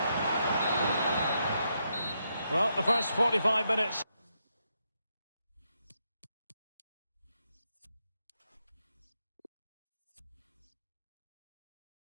Well, the first 45 minutes.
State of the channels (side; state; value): both; inverted; correlation -0.81